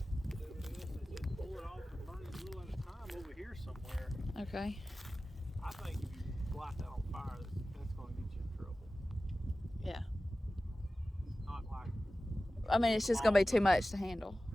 Pull it off and burn it a little at a time over here somewhere. Okay. I think if you light that on fire, that's going to get you in trouble. Yeah. Not like I mean, it's just going to be too much to handle.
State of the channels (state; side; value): normal; both; correlation 0.96